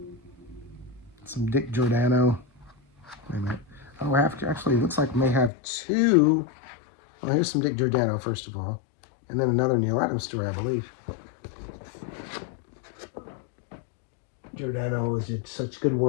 Dick Giordano. Wait a minute. Oh, actually, it looks like we may have 2. Well, here's some Dick Giordano, first of all. And then another Neal Adams story, I believe. Giordano did such good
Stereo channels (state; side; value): drops out; right; at 5.5 s